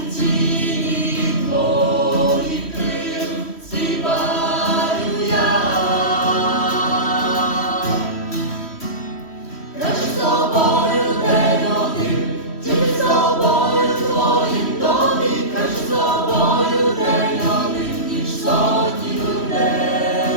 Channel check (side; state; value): right; late; 3.1 ms